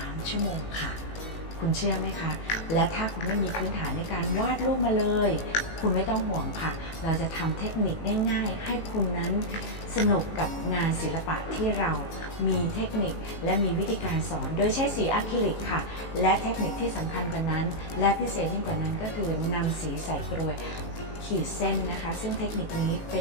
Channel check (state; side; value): late; right; 18 ms